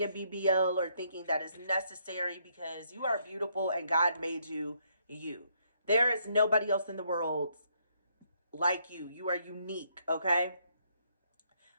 a BBL or thinking that is necessary, because you are beautiful and God made you you. There is nobody else in the world like you. You are unique, okay?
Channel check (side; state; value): both; inverted; correlation -0.72